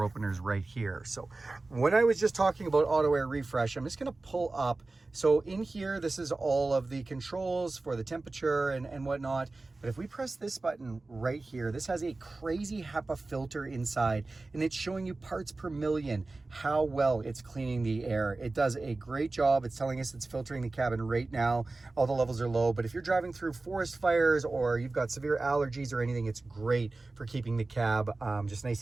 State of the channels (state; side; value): quieter; left; 3.3 dB